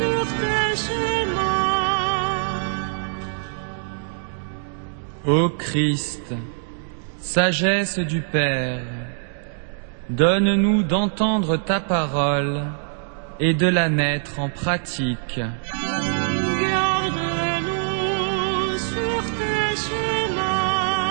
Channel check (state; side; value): silent; left; digital silence